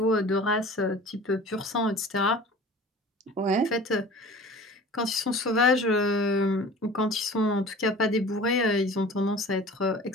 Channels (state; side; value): normal; both; correlation 0.42